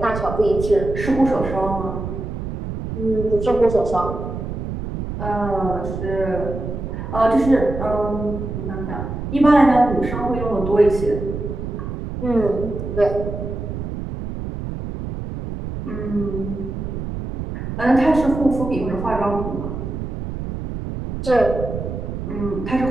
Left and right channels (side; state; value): right; noise; rumble, 6 dB below the sound